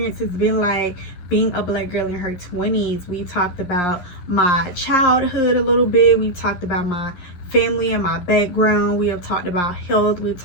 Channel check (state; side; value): late; right; 11 ms